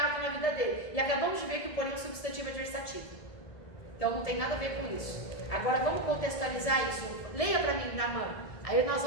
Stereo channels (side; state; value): right; late; 1.7 ms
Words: na vida dele. E acabamos de ver que o porém é um substantivo adversativo. Então não tem nada a ver com isso. Agora vamos contextualizar isso. Leia para mim, Naamã. Aí nós